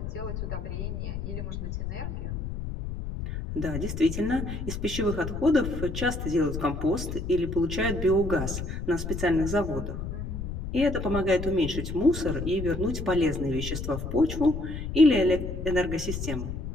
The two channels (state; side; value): noise; left; rumble, 5 dB below the sound